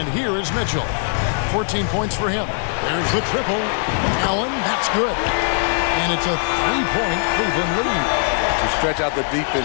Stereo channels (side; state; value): right; silent; 60 dB below the other